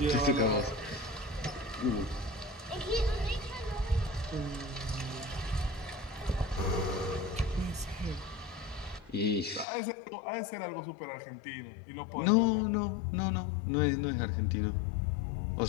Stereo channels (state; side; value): drops out; right; at 9.7 s